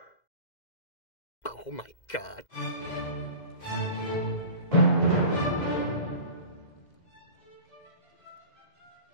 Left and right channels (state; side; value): late; right; 2.0 ms